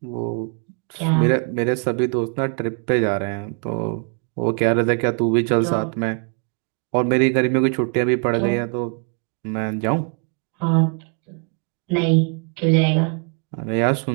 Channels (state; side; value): quieter; left; 38.8 dB